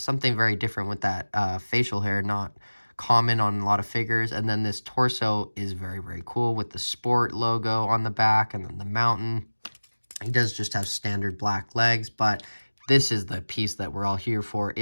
very different with that facial hair, not common on a lot of figures. And then this torso is very, very cool with the sport logo on the back and then the mountain. He does just have standard black legs, but this is the piece that we're all here for.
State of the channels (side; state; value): both; inverted; correlation -1.00